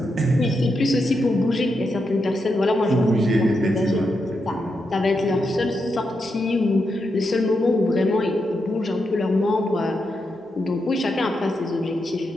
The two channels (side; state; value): both; normal; correlation 0.85